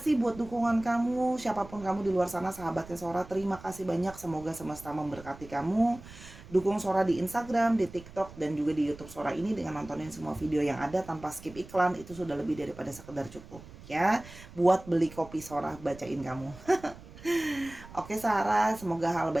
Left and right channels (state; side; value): noise; right; rumble, 18 dB below the sound